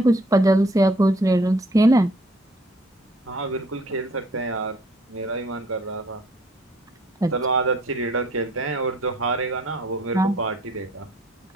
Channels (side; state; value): both; normal; correlation 0.60